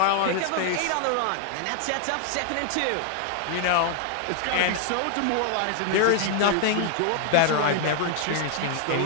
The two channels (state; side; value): different; both; correlation 0.00